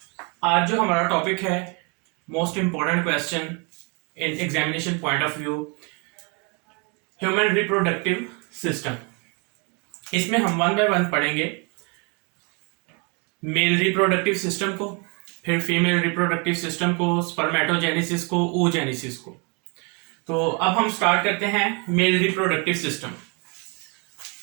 आज जो हमारा टॉपिक है, most important question in examination point of view, human reproductive system. इसमें हम वन बाय वन पढ़ेंगे मेल रिप्रोडक्टिव सिस्टम को, फिर फीमेल रिप्रोडक्टिव सिस्टम को, स्पर्मेटोजेनेसिस को, oogenesis को। तो अब हम स्टार्ट करते हैं male reproductive system.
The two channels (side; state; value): left; quieter; 33.2 dB